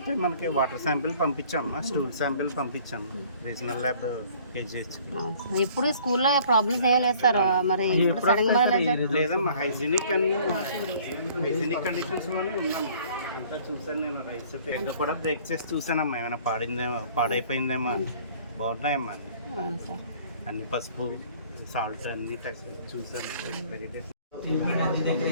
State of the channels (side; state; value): both; inverted; correlation -0.54